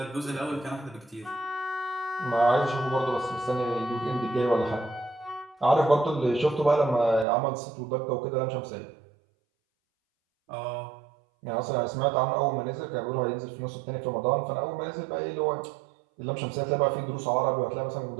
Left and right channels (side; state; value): left; drops out; at 7.2 s